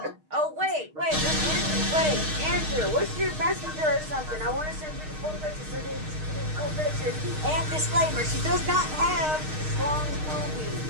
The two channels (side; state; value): left; late; 6.5 ms